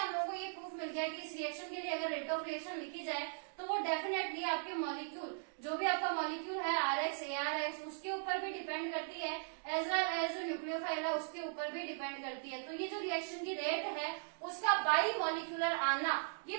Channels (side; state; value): left; silent; digital silence